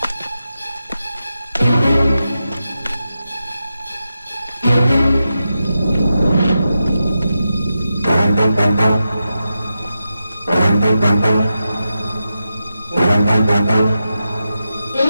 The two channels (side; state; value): both; inverted; correlation -0.89